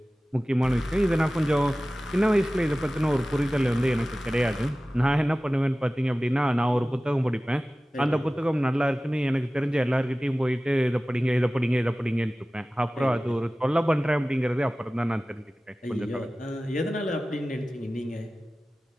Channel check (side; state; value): both; normal; correlation 0.97